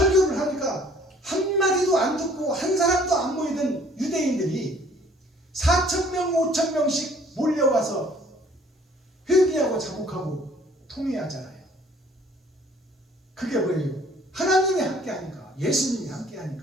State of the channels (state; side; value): normal; both; correlation 0.57